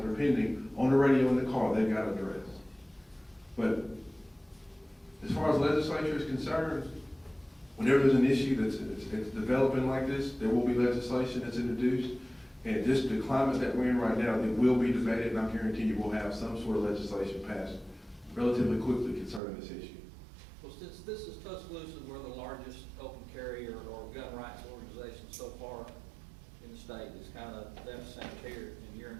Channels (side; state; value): left; drops out; at 19.4 s